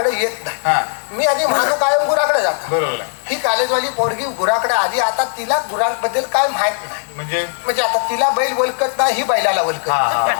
येत हा. नाही. मी आधी महादू कायम गुराकडे जातो. बरोबर आहे. ही कॉलेजवाली पोरगी गुराकडे आली. आता तिला गुरांबद्दल काय माहित नाही. म्हणजे आता तिला बैल ओळखत नाही, ही बैलाला ओळखत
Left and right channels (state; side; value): silent; right; digital silence